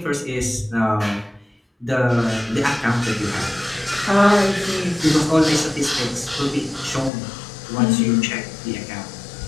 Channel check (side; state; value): right; drops out; at 7.1 s